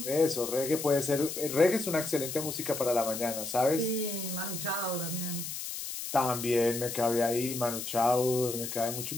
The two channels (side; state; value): left; noise; hiss, 6 dB below the sound